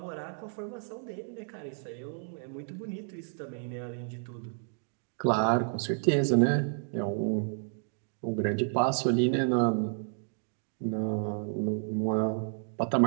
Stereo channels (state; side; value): silent; left; 57 dB below the other